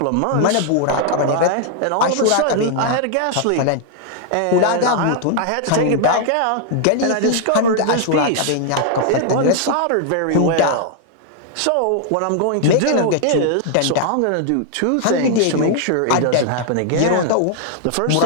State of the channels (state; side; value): different; both; correlation 0.00